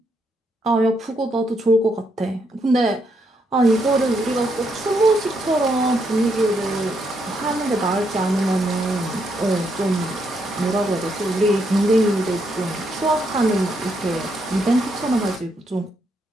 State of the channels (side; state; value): both; normal; correlation 0.78